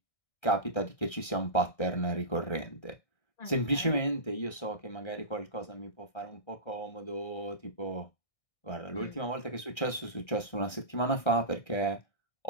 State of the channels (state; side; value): late; right; 1.3 ms